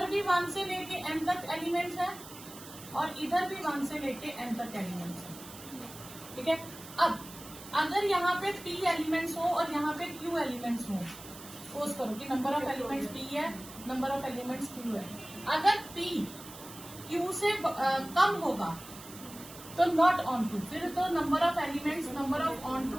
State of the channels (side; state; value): right; noise; hiss, 16 dB below the sound